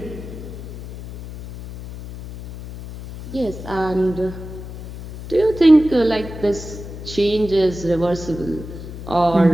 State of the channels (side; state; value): left; noise; hum, 12 dB below the sound